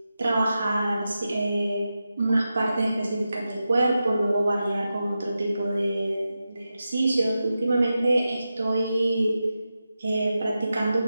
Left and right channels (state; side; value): inverted; both; correlation -0.91